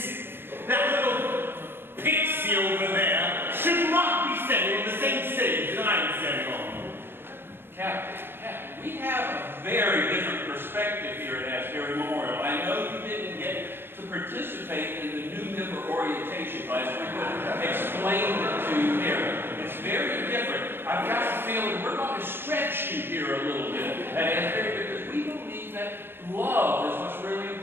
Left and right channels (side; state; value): left; late; 0.10 ms